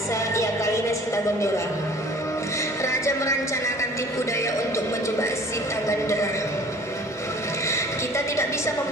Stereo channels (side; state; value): both; normal; correlation 0.49